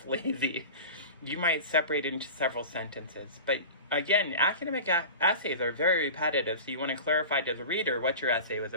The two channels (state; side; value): inverted; both; correlation -0.33